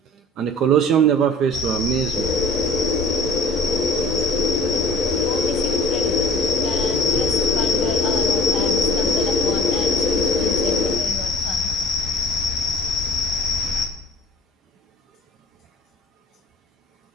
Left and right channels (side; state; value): both; normal; correlation 0.46